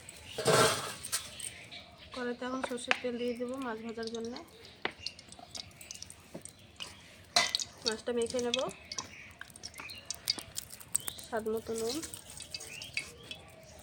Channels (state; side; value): identical; both; correlation 1.00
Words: কড়াইতে এখন সরষের তেল দিয়ে দেবো মাছ ভাজার জন্য। মাছটা মেখে নেব, স্বাদ মতো নুন